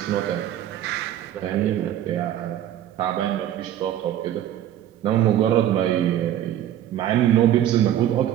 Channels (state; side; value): quieter; left; 11.7 dB